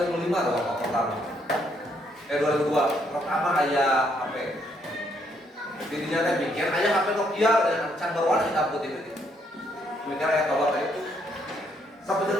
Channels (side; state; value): both; normal; correlation 0.72